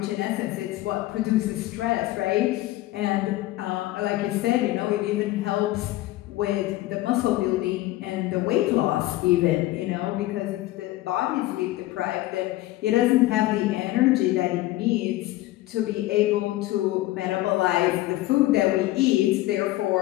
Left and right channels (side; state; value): right; quieter; 16.9 dB